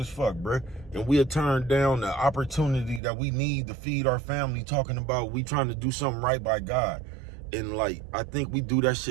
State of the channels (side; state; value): left; drops out; at 3.0 s